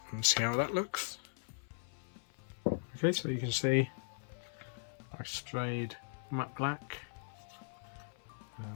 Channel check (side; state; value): right; silent; 52 dB below the other